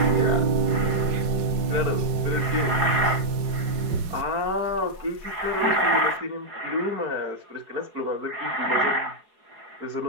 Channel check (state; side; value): late; left; 4.8 ms